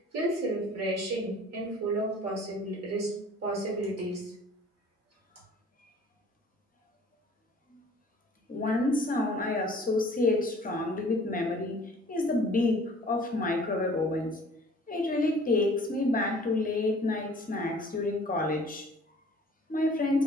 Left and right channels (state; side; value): normal; both; correlation 0.51